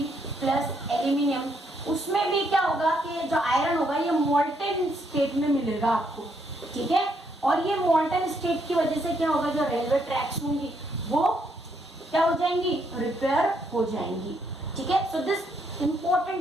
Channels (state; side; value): normal; both; correlation 0.74